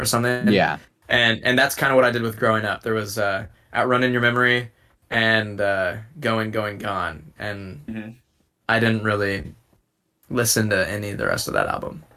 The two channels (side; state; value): both; identical; correlation 1.00